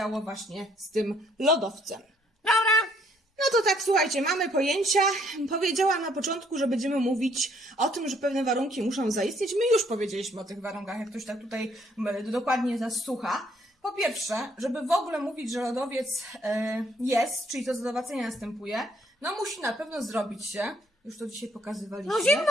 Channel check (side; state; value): both; normal; correlation 0.66